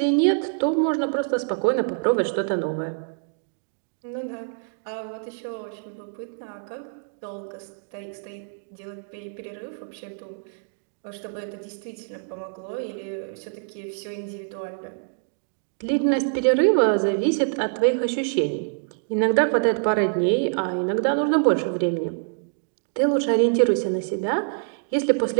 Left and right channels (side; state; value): left; silent; digital silence